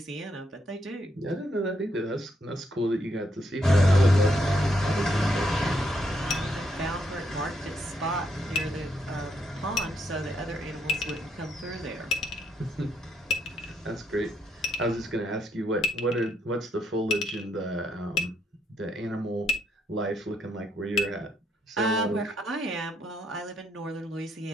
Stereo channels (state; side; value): normal; both; correlation 0.75